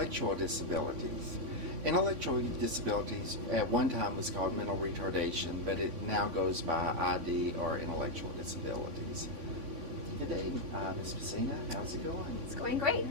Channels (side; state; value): left; late; 3.5 ms